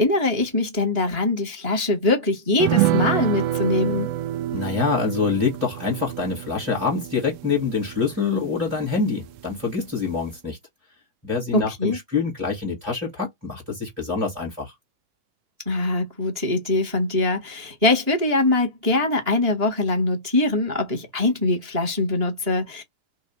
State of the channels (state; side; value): late; left; 2.9 ms